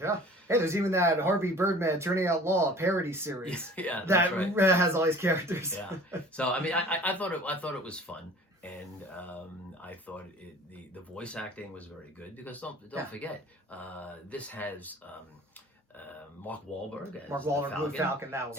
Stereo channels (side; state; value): both; normal; correlation 0.46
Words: Hey, there's even that Harvey Birdman Turning Out Law parody series. That has all these characters. Yeah. So I mean, I thought it was fun, and I thought the voice acting was very good because don't forget this has. Mark Wahlberg as Blue Falcon, that was